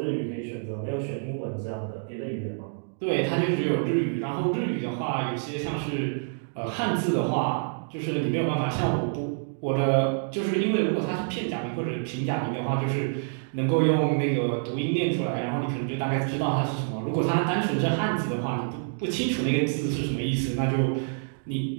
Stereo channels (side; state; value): left; silent; digital silence